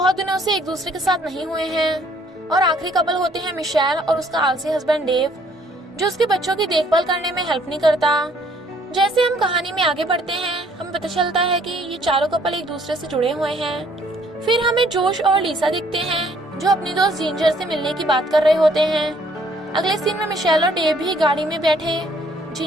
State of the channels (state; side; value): normal; both; correlation 0.63